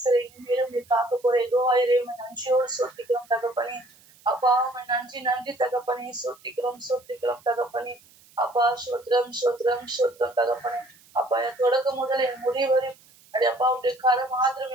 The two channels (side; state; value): right; noise; hiss, 27 dB below the sound